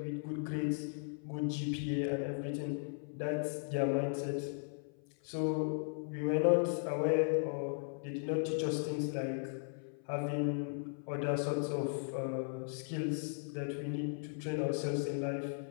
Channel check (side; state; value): right; silent; 53 dB below the other